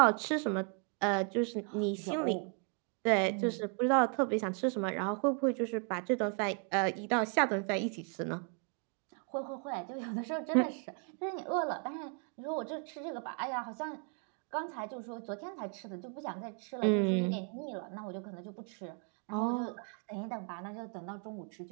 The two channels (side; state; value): left; quieter; 38.8 dB